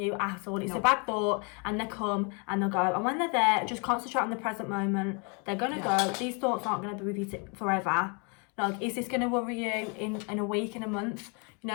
at all. It's a bad thought, and they come and they'll go. And when they're there, just concentrate on the present moment. They're going to go. These thoughts aren't going to be with you forever. Like, is this going to worry you in a week, in a month? You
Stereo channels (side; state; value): right; quieter; 34.7 dB